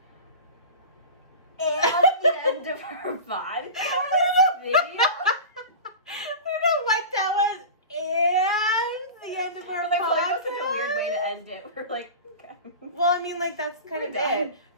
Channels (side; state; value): both; inverted; correlation -0.31